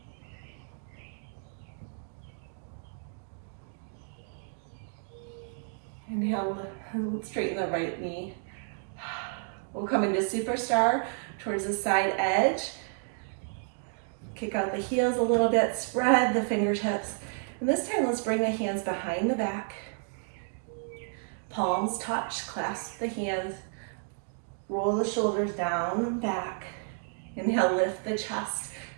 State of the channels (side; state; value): left; silent; 57 dB below the other